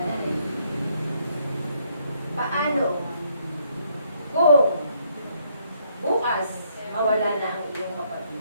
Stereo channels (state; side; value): inverted; both; correlation -0.70